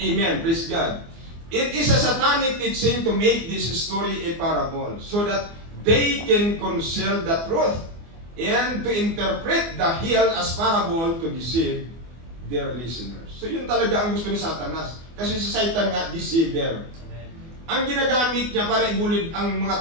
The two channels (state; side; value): late; left; 24 ms